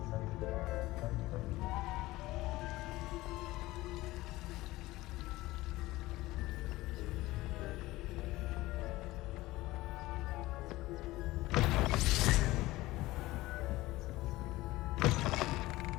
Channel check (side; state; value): right; quieter; 18.5 dB